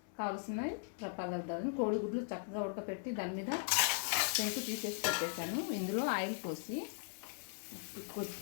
కావాల్సిన పదార్థాలను కోడిగుడ్లు చక్కగా ఉడకపెట్టి దాని మీద పెంకు తీసేసి పెట్టేశాను. ఇందులో ఆయిల్ పోసి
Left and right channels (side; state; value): right; silent; 52 dB below the other